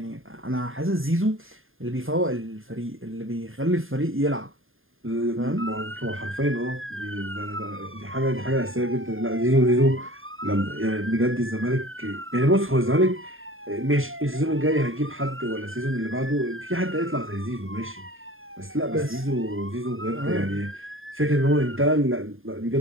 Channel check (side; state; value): left; late; 0.59 ms